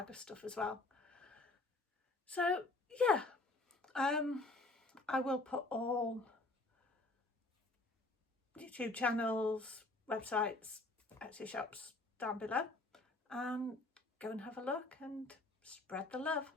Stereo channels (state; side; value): quieter; right; 3.0 dB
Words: of stuff as well. So yeah, I will put all YouTube channels, websites, Etsy shops down below, and go and have a look and spread the love.